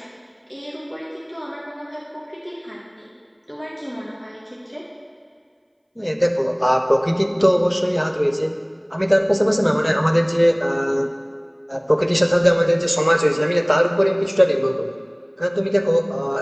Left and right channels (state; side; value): identical; both; correlation 1.00